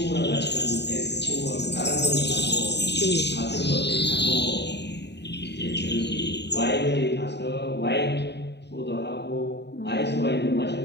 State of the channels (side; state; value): right; late; 0.50 ms